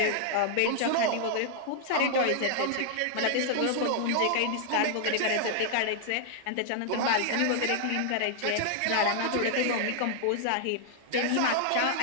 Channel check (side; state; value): both; different; correlation -0.01